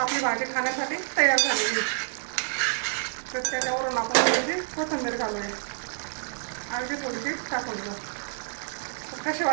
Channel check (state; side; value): silent; left; 59 dB below the other